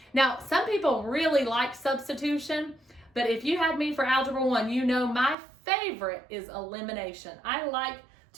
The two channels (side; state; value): left; drops out; at 5.4 s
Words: Now, some people really like substitution, but if you had me for Algebra 1, you know my favorite is elimination. I like